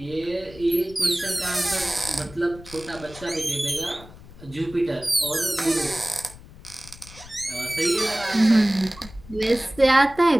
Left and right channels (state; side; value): noise; left; rumble, 19 dB below the sound